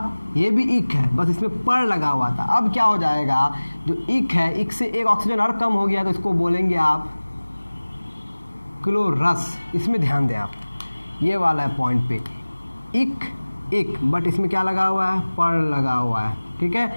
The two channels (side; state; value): both; inverted; correlation -1.00